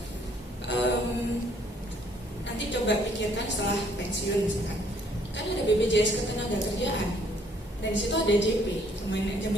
Nanti coba pikirkan setelah pensiun misalkan. Kan ada BPJS Ketenagakerjaan. Dan di situ ada JP,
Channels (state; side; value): normal; both; correlation 0.64